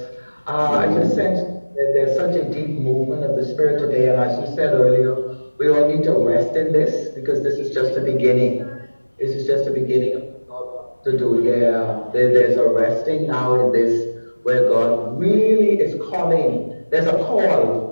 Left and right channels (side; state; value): both; inverted; correlation -1.00